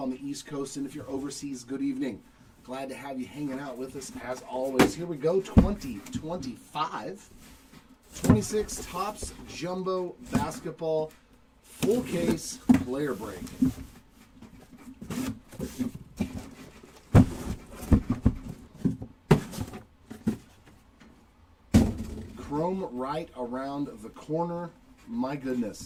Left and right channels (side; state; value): both; identical; correlation 1.00